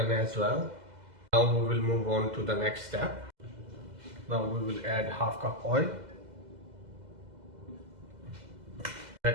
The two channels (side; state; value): left; late; 2.0 ms